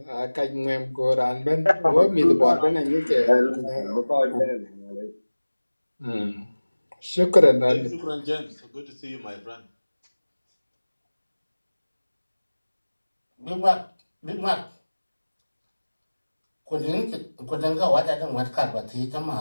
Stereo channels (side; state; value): both; inverted; correlation -1.00